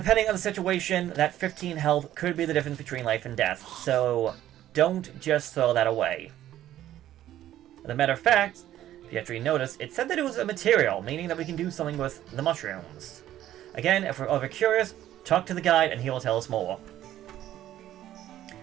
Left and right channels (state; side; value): quieter; left; 12.7 dB